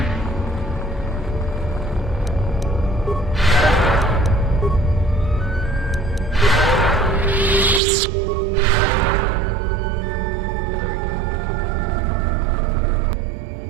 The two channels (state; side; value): drops out; left; at 7.8 s